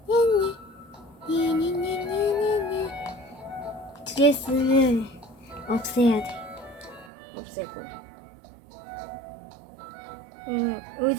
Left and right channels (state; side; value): drops out; left; at 7.1 s